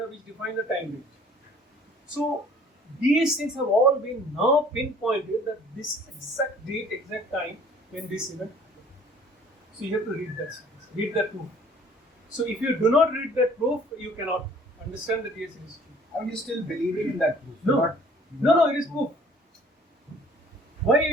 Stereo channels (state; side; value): normal; both; correlation 0.54